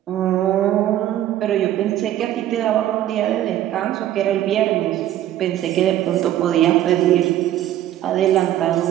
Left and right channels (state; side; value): quieter; left; 12.7 dB